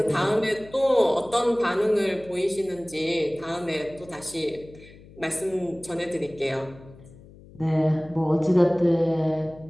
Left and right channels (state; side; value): noise; left; hum, 21 dB below the sound